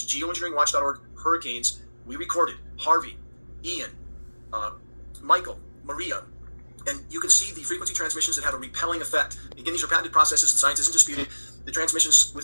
geoengineeringwatch.org hurricanes, we recorded Harvey, Ian, Michael, Maria, and you can see the frequency transmissions that have a repelling effect. Again, these are patented processes, and science isn't disputed. The transmissions with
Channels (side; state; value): both; inverted; correlation -1.00